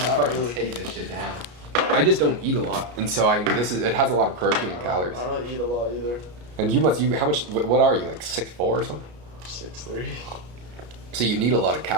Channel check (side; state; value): left; late; 33 ms